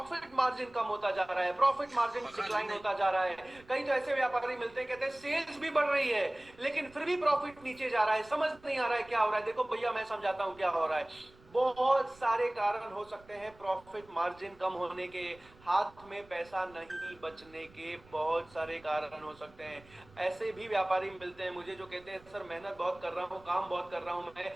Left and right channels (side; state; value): right; noise; rumble, 25 dB below the sound